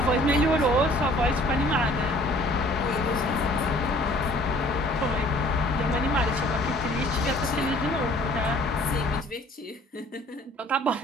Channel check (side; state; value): both; normal; correlation 0.54